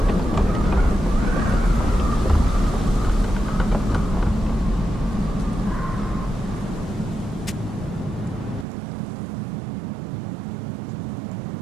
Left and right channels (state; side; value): drops out; left; at 8.7 s